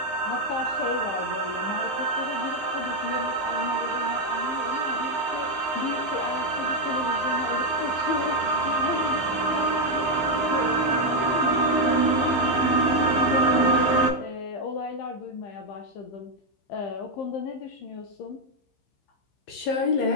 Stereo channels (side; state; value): right; late; 15 ms